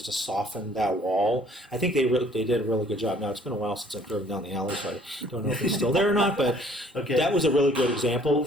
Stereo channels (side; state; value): both; normal; correlation 0.57